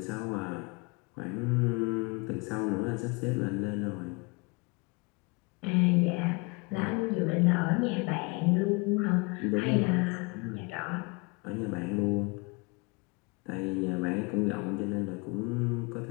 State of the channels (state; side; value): quieter; right; 28.7 dB